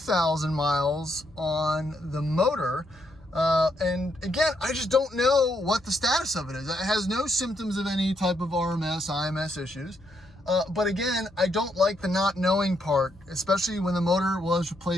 miles on the motor. And again, I just don't know what the status of it is. It has no symptoms of any type of RMS, IMS issues. But again, I don't like the not knowing part, especially when the motor was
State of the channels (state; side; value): noise; left; hum, 27 dB below the sound